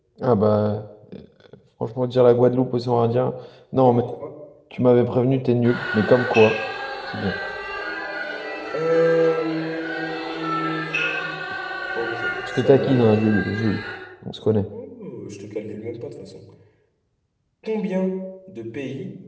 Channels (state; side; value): identical; both; correlation 1.00